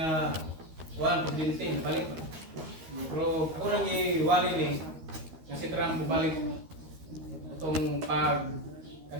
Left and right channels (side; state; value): left; late; 13 ms